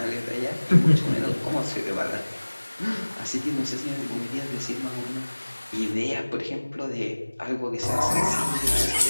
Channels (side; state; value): both; inverted; correlation -1.00